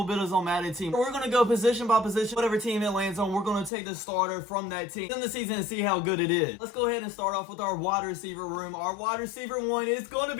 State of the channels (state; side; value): drops out; right; at 3.7 s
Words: Builders on Madden team. We're going to go position by position. Whatever team it lands on, we're going to take the starter from that team in the season and see how good it is. Let's go ahead and start off with our wide receiver room. Our wide receiver one is going to